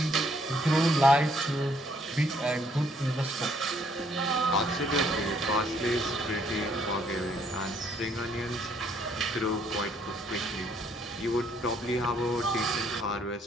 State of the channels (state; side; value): normal; both; correlation 0.67